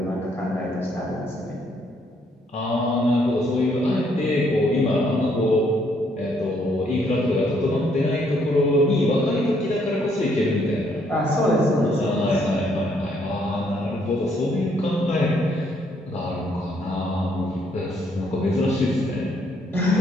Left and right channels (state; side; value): normal; both; correlation 0.70